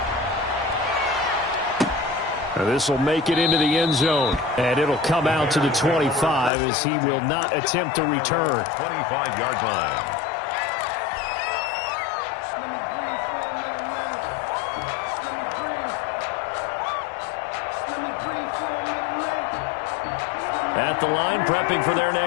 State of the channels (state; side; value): drops out; right; at 6.5 s